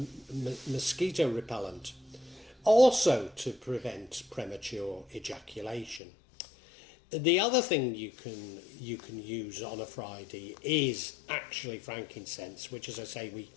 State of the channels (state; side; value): drops out; right; at 6.0 s